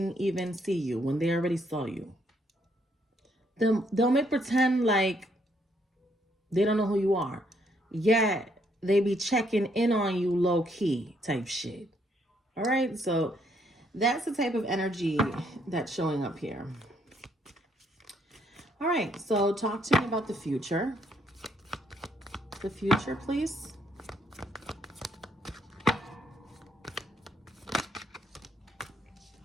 even see you when they already saw you. They'll make pretend like they don't know who you are. Yet they be checking in on you low key type shit. All right, so that's the type of energy that's showing up here. All right, so talk to me about the future. The future, please.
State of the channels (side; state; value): both; normal; correlation 0.71